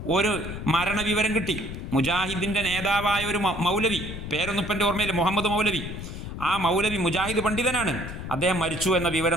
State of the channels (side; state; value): left; noise; rumble, 8 dB below the sound